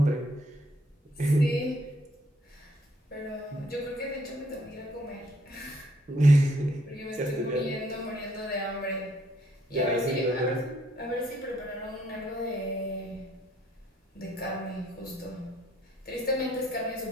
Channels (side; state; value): both; normal; correlation 0.67